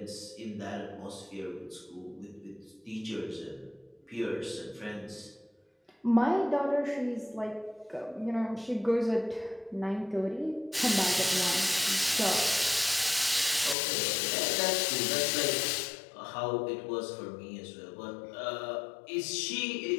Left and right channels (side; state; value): right; drops out; at 13.8 s